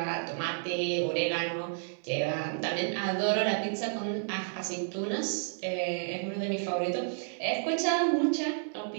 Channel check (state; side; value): silent; left; 57 dB below the other